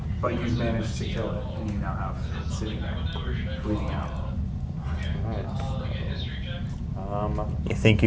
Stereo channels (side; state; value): both; identical; correlation 1.00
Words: But you've managed to kill it, and you now have it sitting there, bleeding out. You think